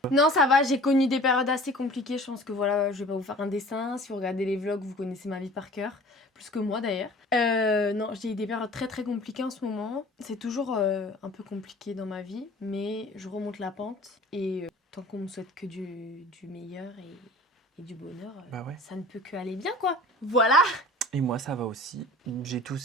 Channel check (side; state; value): both; normal; correlation 0.44